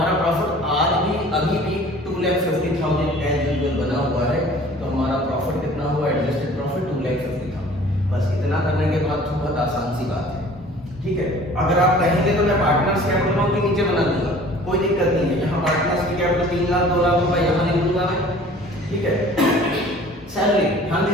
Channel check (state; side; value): normal; both; correlation 0.49